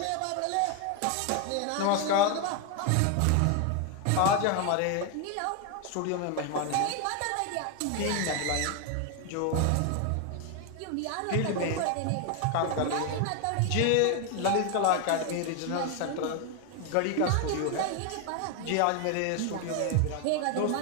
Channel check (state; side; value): different; both; correlation 0.01